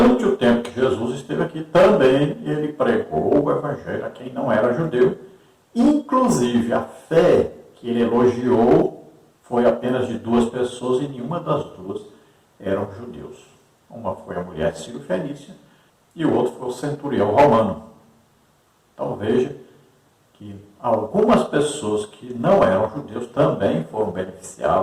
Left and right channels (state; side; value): identical; both; correlation 1.00